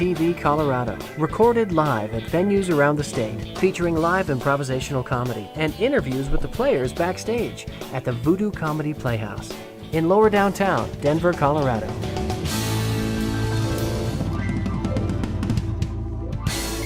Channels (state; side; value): identical; both; correlation 1.00